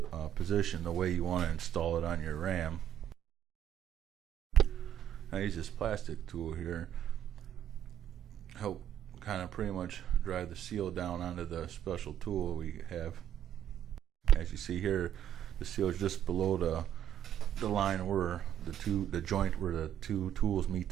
position, the way you want to install it on your ram. I use this plastic tool here, help kind of pretty much drive the seal down onto the special tool we have. As you see here, the seal is just below the line where the joint where the two tools meet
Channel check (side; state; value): left; quieter; 10.4 dB